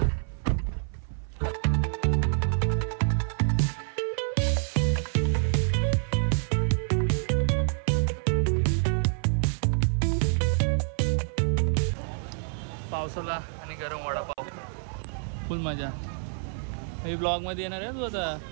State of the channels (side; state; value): left; silent; 57 dB below the other